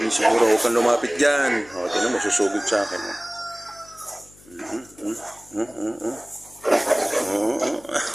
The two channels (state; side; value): noise; left; hum, 26 dB below the sound